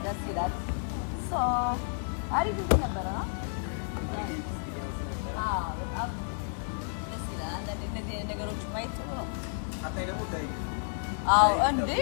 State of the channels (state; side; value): silent; right; 57 dB below the other